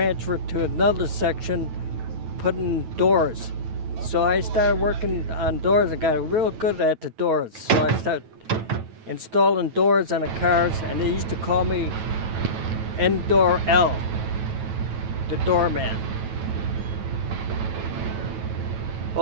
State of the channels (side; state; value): left; late; 9.1 ms